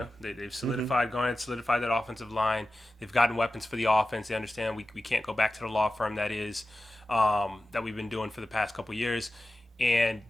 they've solidified, gone and solidified that offensive line. They've gotten weapons for the offense. They understand we can't go back to the law firm that we've been doing for the past couple years. And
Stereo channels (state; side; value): normal; both; correlation 0.94